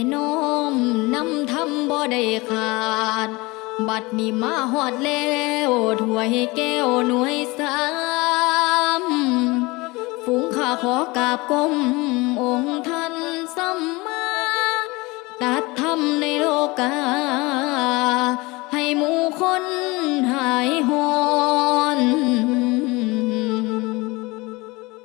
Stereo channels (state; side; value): quieter; right; 23.5 dB